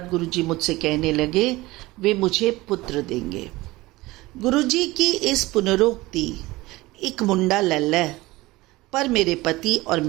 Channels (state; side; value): quieter; left; 19.9 dB